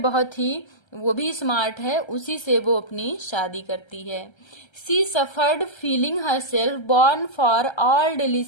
बहुत ही, वो भी स्मार्ट है, उसी से वो अपनी शादी करती है। She suffered feeling her self born for all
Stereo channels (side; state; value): right; late; 1.3 ms